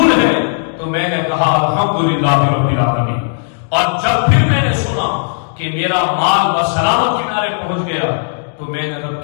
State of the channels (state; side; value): silent; right; digital silence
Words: ہے، تو میں نے کہا الحمدللہ رب العالمین۔ اور جب پھر میں نے سنا کہ میرا مال بسلامت کنارے پہنچ گیا، تو میں نے رب